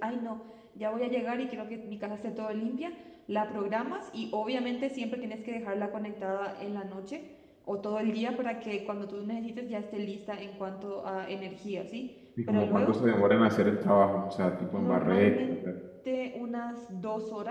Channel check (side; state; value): both; identical; correlation 1.00